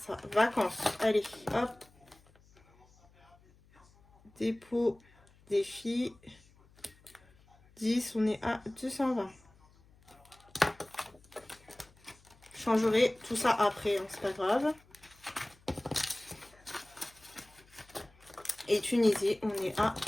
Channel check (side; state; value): left; noise; hum, 28 dB below the sound